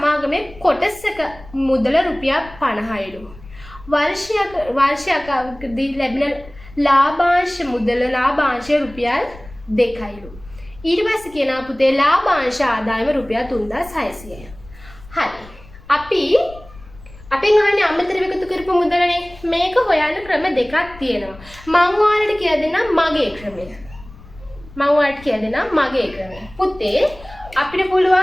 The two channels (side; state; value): left; noise; rumble, 20 dB below the sound